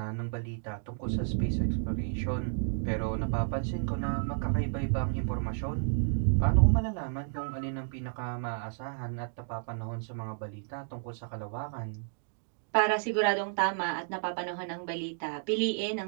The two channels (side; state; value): left; silent; digital silence